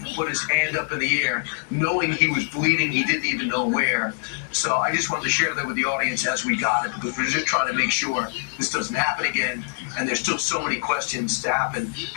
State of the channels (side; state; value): right; silent; digital silence